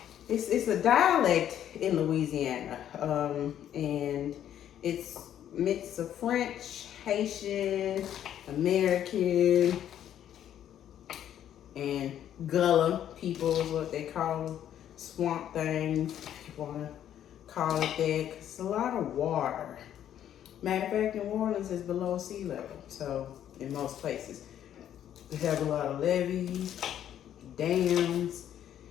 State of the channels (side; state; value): right; quieter; 10.6 dB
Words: it's a dialect in Louisiana, and it's mix of French, Haitian, American, and Gullah people is what they call them. Swamp things, if you want to call it that, 'cause it's a lot of water. Matter of fact, New Orleans is below sea level, so in most places. We have a lot of levees, dams,